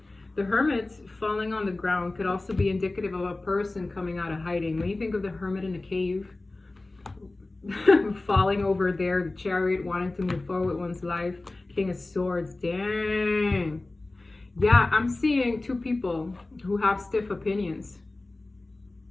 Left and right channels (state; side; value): quieter; right; 3.0 dB